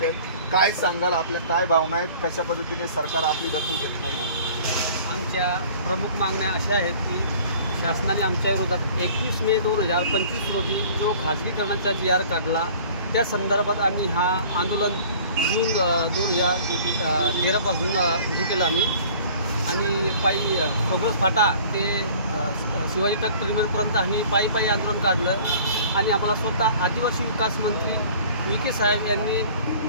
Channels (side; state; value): both; inverted; correlation -0.48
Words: काय सांगाल, आपल्या काय भावना आहेत, कशा पद्धतीने सरकार आपली दखल घेत नाही? आमच्या प्रमुख मागण्या अशा आहेत की शासनाने आमच्या विरोधात 21 मे 2025 रोजी जो खाजगीकरणाचा GR काढला त्या संदर्भात आम्ही हा आंदोलन जून 2013 पासून हे केलं आम्ही आणि पायी प्रोग्रेस फाटा ते शिवाजी तक टर्मिनलपर्यंत आम्ही पायी आंदोलन काढलं आणि आम्हाला स्वतः आदिवासी विकास मंत्री विखे साहेब यांनी